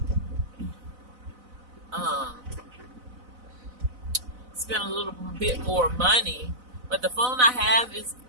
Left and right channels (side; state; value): left; late; 4.0 ms